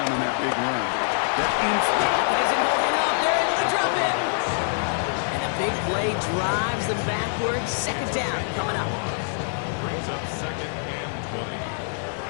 on that big run. That Pocket isn't holding up. They're able to drop it. And a big play drives them backwards. 2nd down coming up. Brings up 2nd and 20.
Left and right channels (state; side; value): silent; right; digital silence